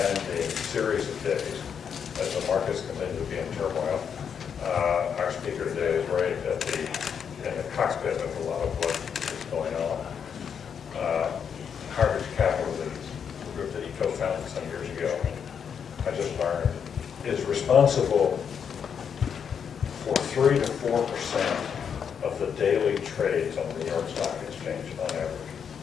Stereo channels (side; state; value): right; quieter; 7.3 dB